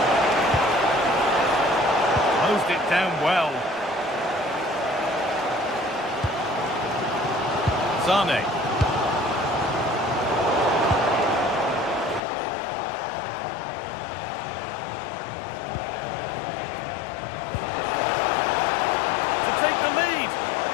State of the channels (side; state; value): right; drops out; at 12.2 s